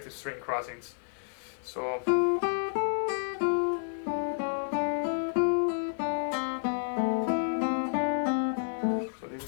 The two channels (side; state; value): right; silent; digital silence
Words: string crossings. So this